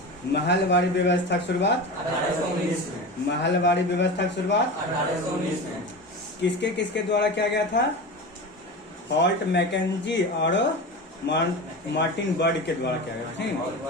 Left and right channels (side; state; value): both; normal; correlation 0.27